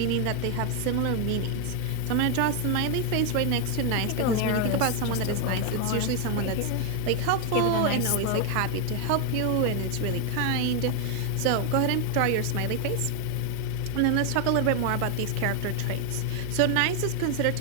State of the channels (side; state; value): both; different; correlation 0.01